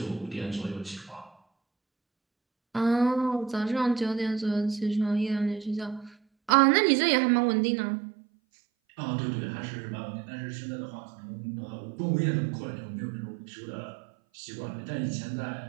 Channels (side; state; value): left; drops out; at 6.5 s